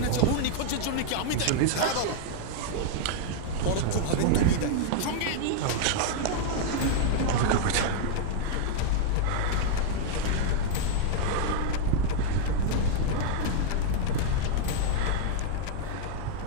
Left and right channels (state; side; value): different; both; correlation -0.01